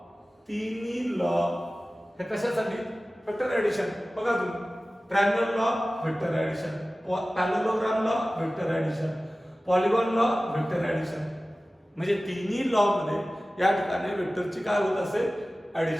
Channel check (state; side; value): normal; both; correlation 0.96